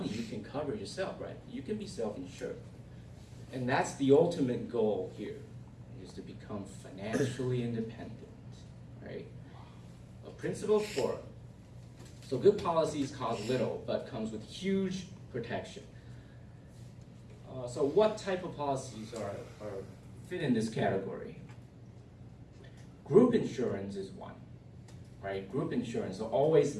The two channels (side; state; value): both; identical; correlation 1.00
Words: you can cover yourself, right? You can be self-insured. And that's the ultimate goal here, is to become financially independent, right? A principle 4. So good policies cost little, but comes with huge protection. So what type of policies are fit in this category? Group insurance is one, right? Group insurance, so